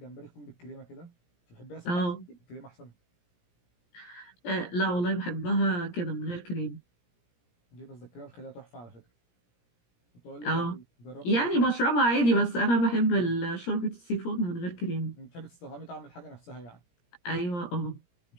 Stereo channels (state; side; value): late; right; 17 ms